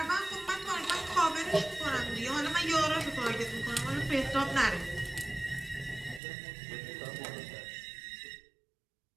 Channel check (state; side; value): drops out; left; at 6.2 s